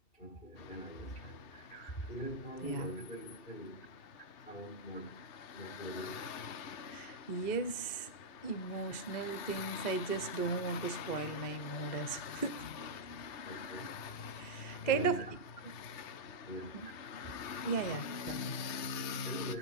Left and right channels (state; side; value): late; right; 2.7 ms